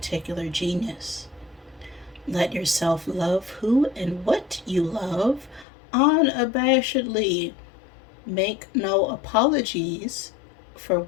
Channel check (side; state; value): right; drops out; at 5.7 s